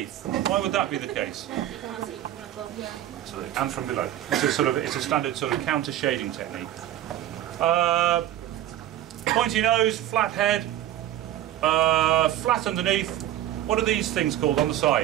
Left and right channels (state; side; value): quieter; left; 12.7 dB